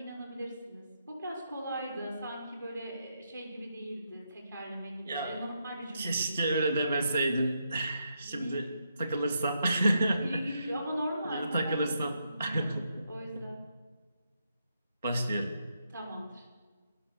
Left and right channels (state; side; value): inverted; both; correlation -0.80